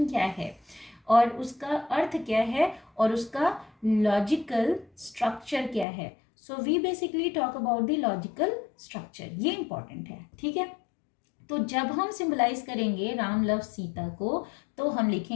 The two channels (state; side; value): drops out; right; at 5.9 s